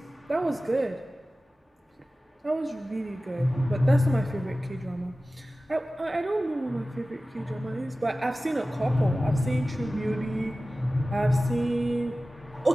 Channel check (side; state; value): both; normal; correlation 0.96